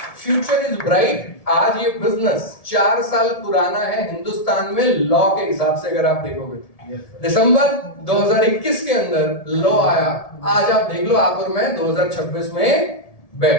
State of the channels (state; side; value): late; right; 1.7 ms